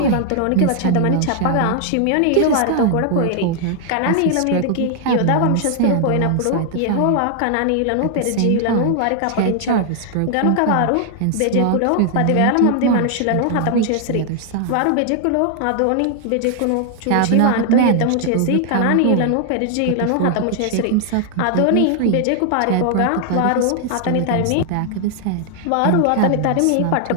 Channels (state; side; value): different; both; correlation 0.00